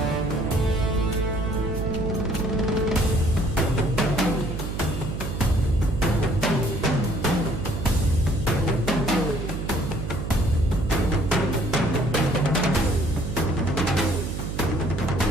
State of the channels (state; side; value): noise; right; hum, 5 dB below the sound